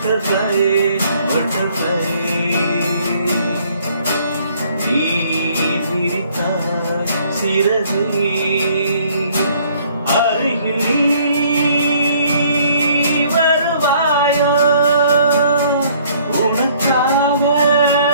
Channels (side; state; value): both; inverted; correlation -0.61